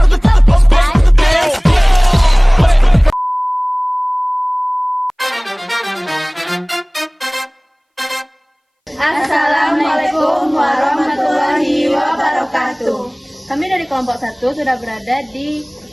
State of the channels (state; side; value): identical; both; correlation 1.00